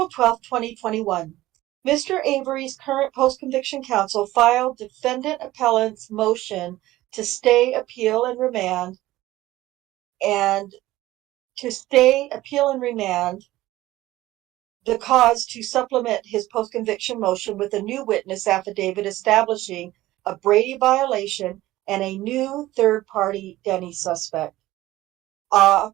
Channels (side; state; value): left; quieter; 16.5 dB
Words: 12, 2021. Mr. Avery's current post-conviction counsel filed defendant appellant's motion to stay, appeal, and remand, the cause to supplement his post-conviction motion with a new witness affidavit establishing a Brady violation and a new third-party Denny suspect.